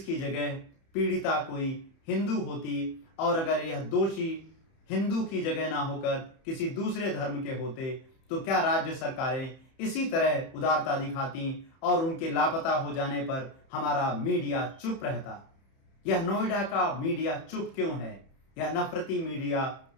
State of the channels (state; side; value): late; right; 31 ms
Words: की जगह पीड़िता कोई हिंदू होती और अगर यह दोषी हिंदू की जगह ना होकर किसी दूसरे धर्म के होते तो क्या राज्य सरकारें इसी तरह उदारता दिखाती और उनके लापता हो जाने पर हमारा मीडिया चुप रहता? यह नोएडा का मीडिया चुप क्यों है? यह नफरती मीडिया